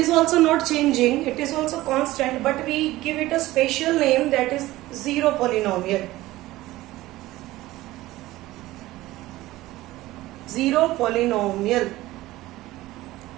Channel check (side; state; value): left; quieter; 17.3 dB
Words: also not changing. It is also constant, but we give it a special name, that is 0 polynomial. 0 polynomial.